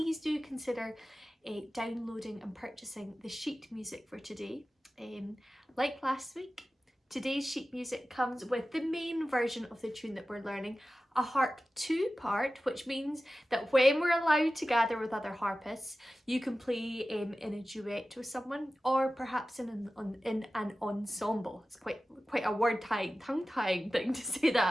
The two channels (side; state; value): both; normal; correlation 0.95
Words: do consider downloading and purchasing the sheet music for today. Like last week, today's sheet music comes with the main version of the tune that we're learning, a harp 2-part, which means that when we're allowed to gather with other harpists, you can play in a duet with someone, or perhaps in an ensemble. It's quite a tongue-tying thing to say